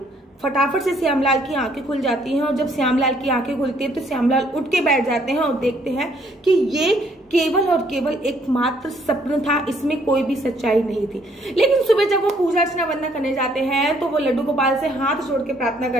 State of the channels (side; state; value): both; normal; correlation 0.65